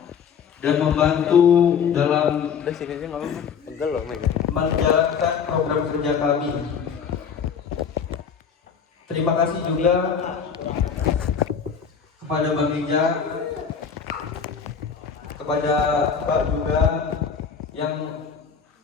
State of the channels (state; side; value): quieter; right; 6.8 dB